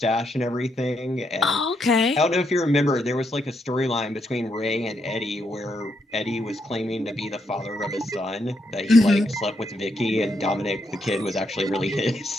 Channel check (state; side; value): normal; both; correlation 0.78